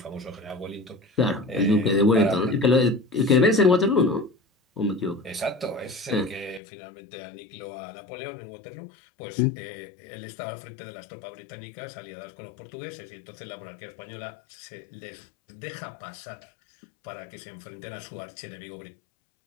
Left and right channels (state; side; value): drops out; right; at 6.6 s